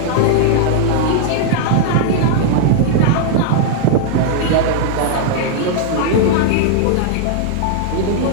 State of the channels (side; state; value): both; different; correlation -0.01